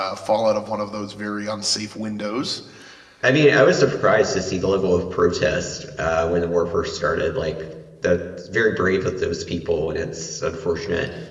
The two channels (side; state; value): both; identical; correlation 1.00